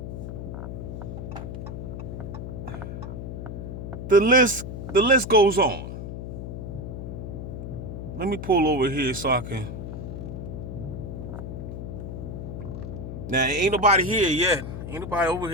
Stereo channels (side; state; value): left; noise; hum, 7 dB below the sound